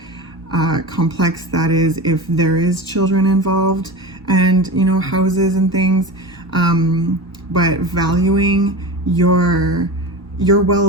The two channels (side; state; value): both; normal; correlation 0.28